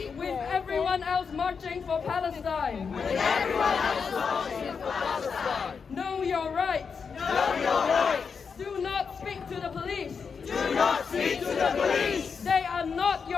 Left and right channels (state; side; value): quieter; right; 5.8 dB